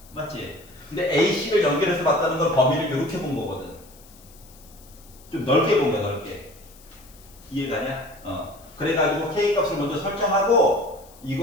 맞지? 근데 AC를 연결해서 봤다는 건 범위를 이렇게 본 거거든. 좀 넓게 본 거야, 넓게. 이해가냐? 그래가지고 K 값을 먼저 설정하고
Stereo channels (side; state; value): left; noise; hiss, 24 dB below the sound